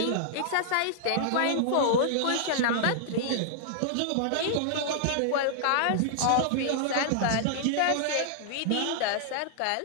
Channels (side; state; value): both; different; correlation -0.01